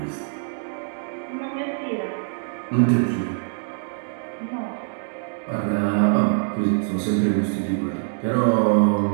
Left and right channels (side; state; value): left; silent; digital silence